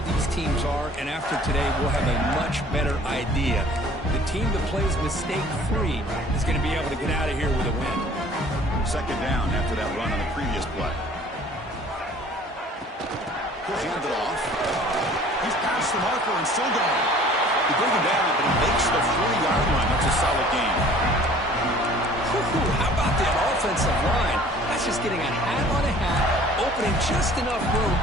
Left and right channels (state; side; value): normal; both; correlation 0.51